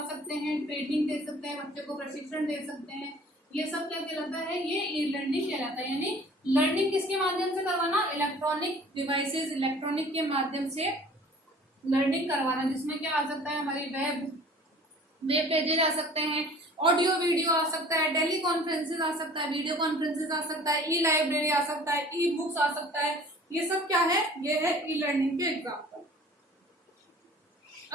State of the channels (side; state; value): both; normal; correlation 0.48